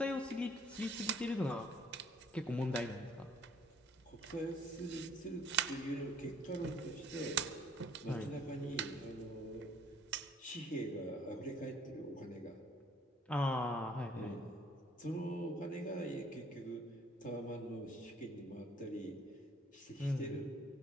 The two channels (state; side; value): normal; both; correlation 0.59